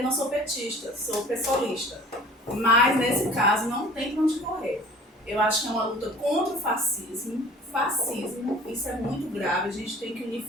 não sou petista, sou pessoalista. Mas, nesse caso, não tem pra onde correr. Eu acho que é uma luta contra o fascismo. Isso é muito grave, a gente tem que unir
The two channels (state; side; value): normal; both; correlation 0.46